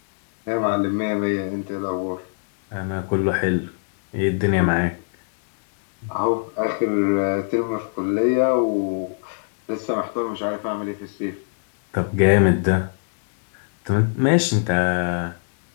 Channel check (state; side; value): silent; right; digital silence